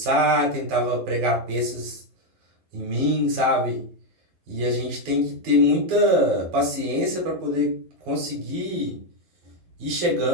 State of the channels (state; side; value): late; left; 12 ms